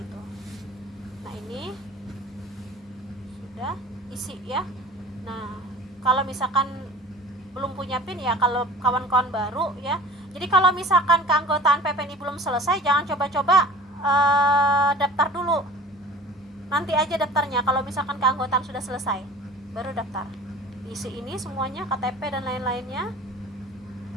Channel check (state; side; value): normal; both; correlation 0.42